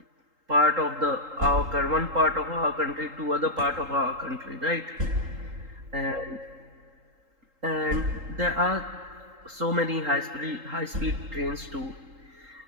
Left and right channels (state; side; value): late; left; 3.8 ms